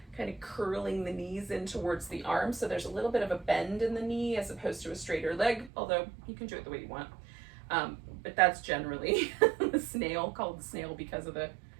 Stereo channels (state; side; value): drops out; left; at 5.7 s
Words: kind of curling the knees in towards the arms. So there's a little bit of a bend in the knee as opposed to a straighter leg, although you can do it the way you want. But that's generally the snail, called the snail because of the